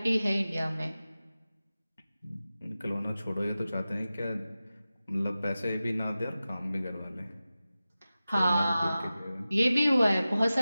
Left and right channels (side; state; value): both; inverted; correlation -0.95